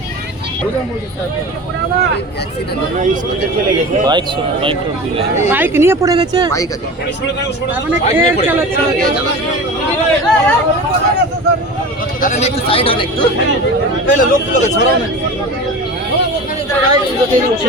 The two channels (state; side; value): normal; both; correlation 0.32